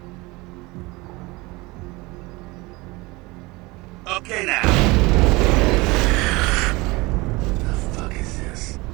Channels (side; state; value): left; quieter; 23.3 dB